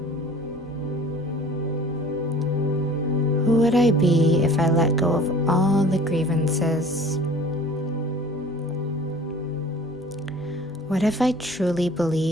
Who would I be if I let go of all the grievances? What if I truly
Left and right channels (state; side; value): normal; both; correlation 0.46